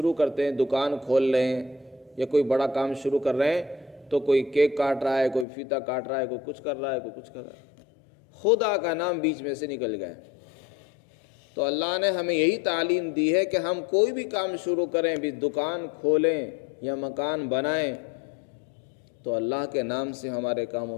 کرتے ہیں، دکان کھول رہے ہیں یا کوئی بڑا کام شروع کر رہے ہیں تو کوئی کیک کاٹ رہا ہے، کوئی فیتا کاٹ رہا ہے، کوئی کچھ کر رہا ہے، کوئی کچھ کر رہا ہے. خدا کا نام بیچ میں سے نکل گئے. تو اللہ نے ہمیں یہی تعلیم دی ہے کہ ہم کوئی بھی کام شروع کریں، بھی دکان کھولیں یا مکان بنائیں تو اللہ کے نام سے ہمارے کاموں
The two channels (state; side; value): drops out; right; at 5.5 s